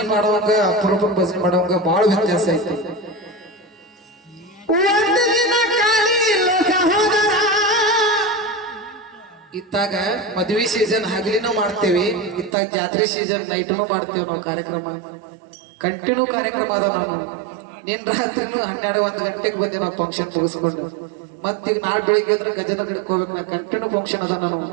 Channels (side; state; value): left; drops out; at 12.6 s